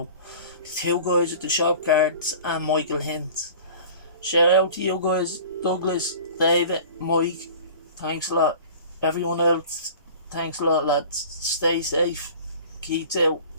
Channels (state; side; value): inverted; both; correlation -0.43